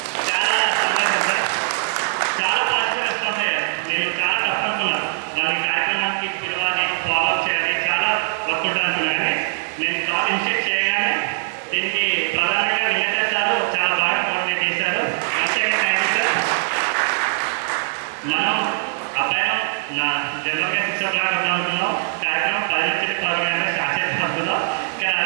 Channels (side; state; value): left; silent; digital silence